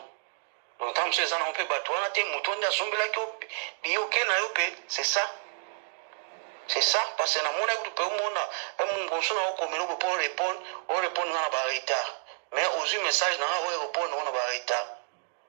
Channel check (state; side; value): silent; left; 58 dB below the other